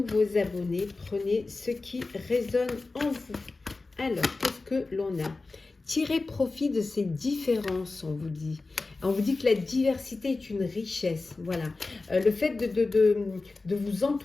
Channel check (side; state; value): right; quieter; 3.6 dB